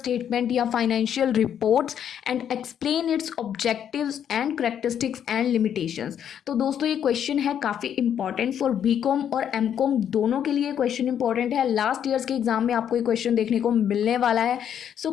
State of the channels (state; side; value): quieter; right; 9.1 dB